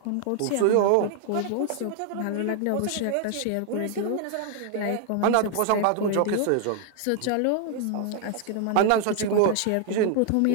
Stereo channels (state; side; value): different; both; correlation 0.00